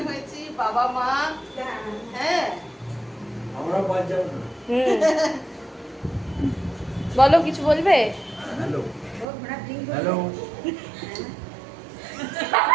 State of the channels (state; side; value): drops out; left; at 9.2 s